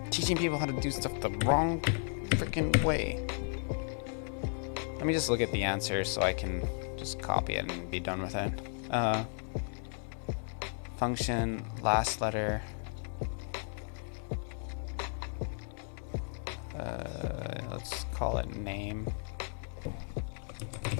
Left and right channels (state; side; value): silent; right; 55 dB below the other